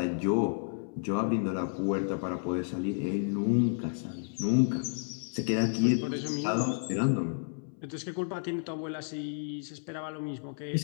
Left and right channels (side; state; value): right; silent; 57 dB below the other